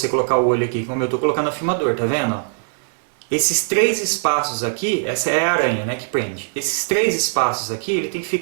colocar o olho aqui, como eu estou colocando no filmador, tá vendo? Ó? Esses 3 espaços aqui, essa é a aranha, né, que prende. Esses 3 espaços aqui, ele tem que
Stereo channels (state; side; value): silent; left; digital silence